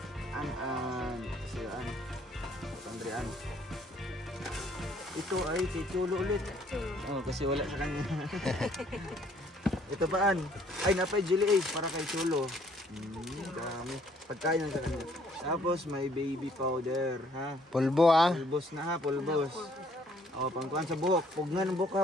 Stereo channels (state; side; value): normal; both; correlation 0.63